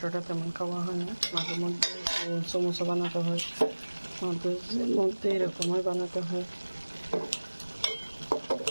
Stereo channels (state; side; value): inverted; both; correlation -1.00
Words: তেমন খাওয়া হয় না, মাঝে মধ্যে সমোসা বানাতে হয়, মাঝে মধ্যে এরকমই বানাতে হয়।